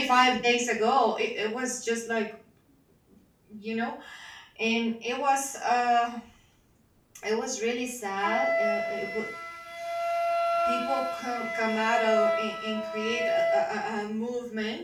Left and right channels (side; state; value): both; identical; correlation 1.00